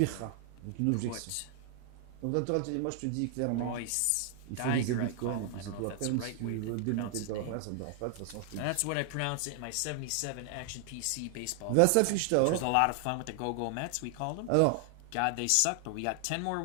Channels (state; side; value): different; both; correlation 0.00